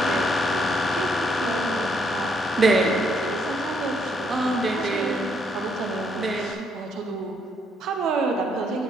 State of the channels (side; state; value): both; normal; correlation 0.72